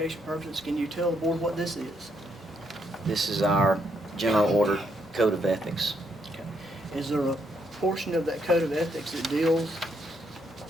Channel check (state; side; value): normal; both; correlation 0.75